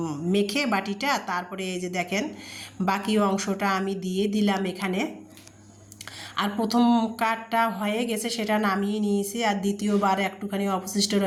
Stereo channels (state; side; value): identical; both; correlation 1.00